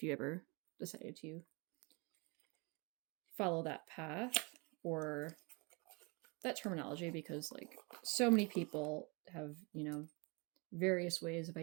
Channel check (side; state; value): left; quieter; 29.6 dB